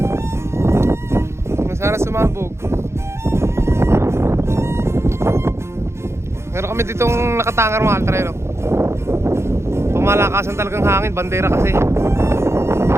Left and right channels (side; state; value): left; late; 0.13 ms